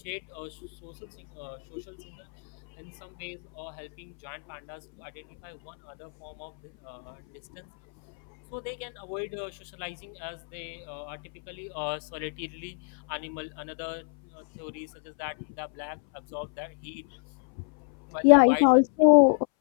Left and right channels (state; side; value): silent; right; 59 dB below the other